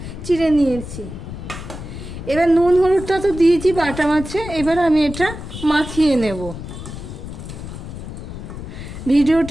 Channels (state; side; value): noise; left; rumble, 10 dB below the sound